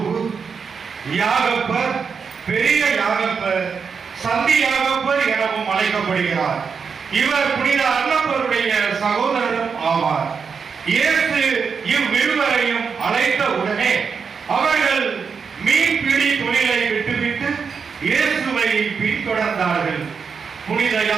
யாகப்பர், பெரிய யாகப்பர், சந்தி யாகப்பர் எனவும் அழைக்கப்படுகிறார். இவர் புனித அன்னப்பருடைய சகோதரரும் ஆவார். இயேசு இவ்விருவரையும் அழைத்த உடனே அவர்கள் மீன்பிடி தொழிலை விட்டுவிட்டு இயேசுவை பின்தொடர்ந்தார்கள். புனித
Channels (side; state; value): left; quieter; 5.9 dB